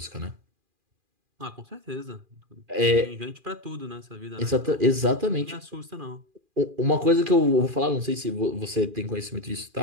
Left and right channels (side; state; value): left; late; 2.4 ms